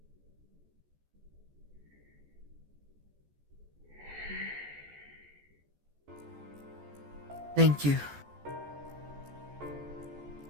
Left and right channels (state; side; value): late; left; 14 ms